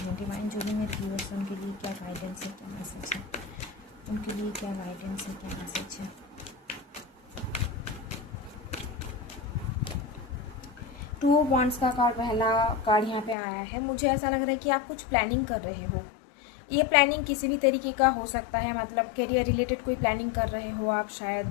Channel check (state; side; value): drops out; right; at 13.4 s